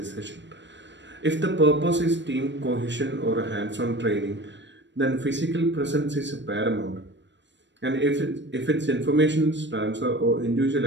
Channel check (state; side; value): late; left; 0.53 ms